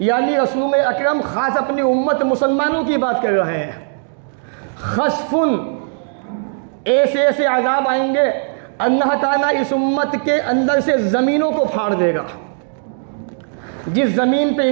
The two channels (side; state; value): left; silent; digital silence